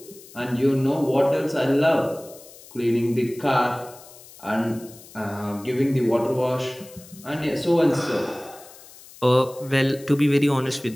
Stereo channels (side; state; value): left; noise; hiss, 20 dB below the sound